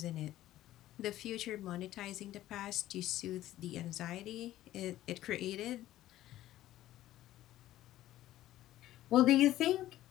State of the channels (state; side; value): quieter; right; 14.2 dB